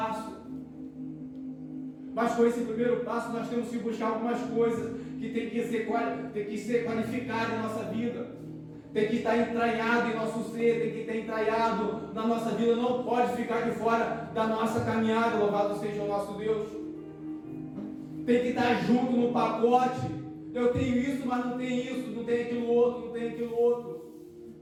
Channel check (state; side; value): identical; both; correlation 1.00